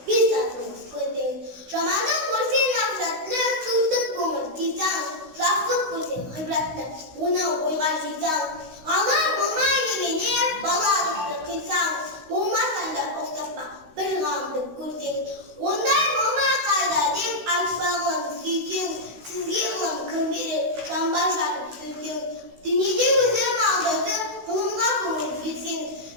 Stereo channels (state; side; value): late; left; 16 ms